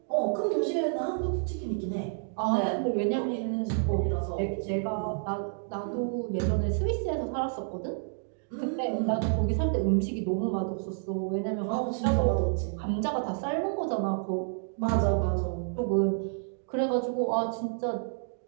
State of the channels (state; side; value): silent; left; digital silence